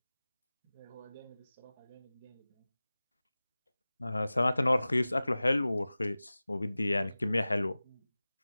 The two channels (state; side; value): inverted; both; correlation -0.98